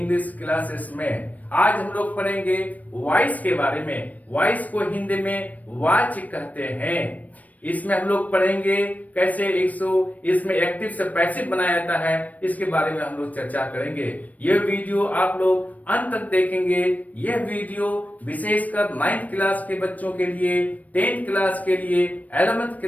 क्लासेस में। आज हम लोग पढ़ेंगे वॉइस के बारे में। वॉइस को हिंदी में वाच कहते हैं। इसमें हम लोग पढ़ेंगे कैसे इसमें एक्टिव से पैसिव बनाया जाता है, इसके बारे में हम लोग चर्चा करेंगे। यह वीडियो आप लोग अंत तक देखेंगे। यह वीडियो विशेषकर 9th क्लास के बच्चों के लिए, 10th क्लास के लिए, 11th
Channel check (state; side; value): late; right; 0.073 ms